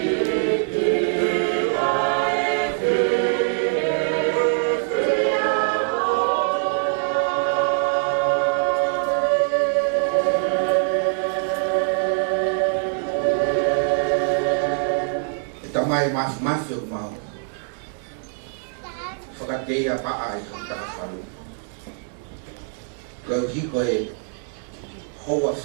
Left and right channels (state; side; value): silent; left; 58 dB below the other